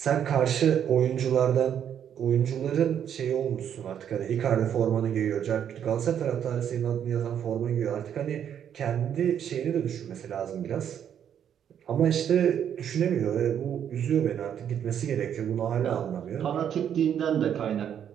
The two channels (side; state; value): left; quieter; 9.1 dB